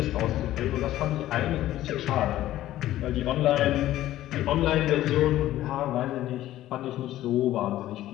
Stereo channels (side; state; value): right; quieter; 14.1 dB